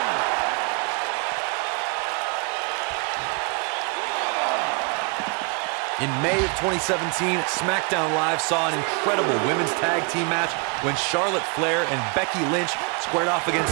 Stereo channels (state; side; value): quieter; left; 34.3 dB